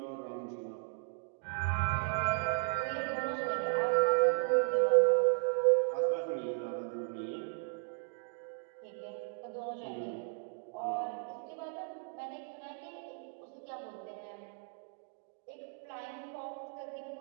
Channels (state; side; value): silent; left; 54 dB below the other